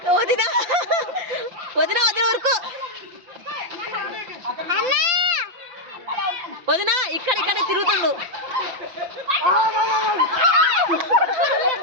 వదినా వదినా వదిన వరకు వదినా ఇక్కడ ఇక్కడ తిరుగుతుండు.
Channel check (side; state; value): left; late; 5.9 ms